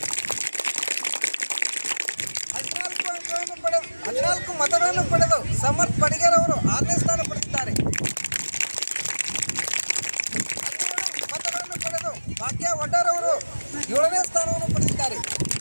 14 ಮತಗಳನ್ನು ಪಡೆದು ಸಮರ್ಥ್ ಪಡಿಗರ್ ಅವರು 6ನೇ ಸ್ಥಾನ ಪಡೆದಿದ್ದಾರೆ. 12 ಮತಗಳನ್ನು ಪಡೆದು ಭಾಗ್ಯ ವಡ್ಡರ್ ಅವರು 7ನೇ ಸ್ಥಾನವನ್ನು ಪಡೆದಿದ್ದಾರೆ.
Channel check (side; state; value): both; inverted; correlation -1.00